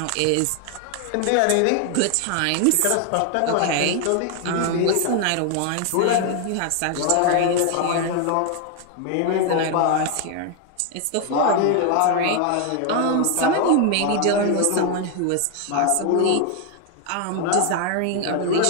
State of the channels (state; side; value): different; both; correlation 0.00